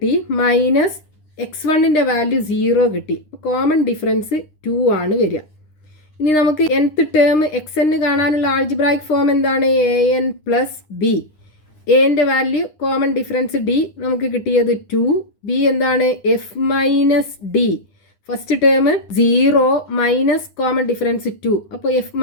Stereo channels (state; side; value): late; right; 9.9 ms